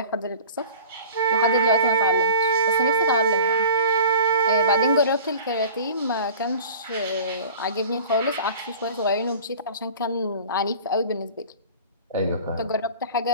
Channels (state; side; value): inverted; both; correlation -0.42